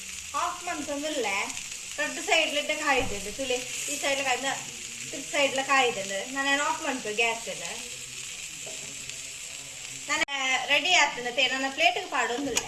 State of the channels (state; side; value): identical; both; correlation 1.00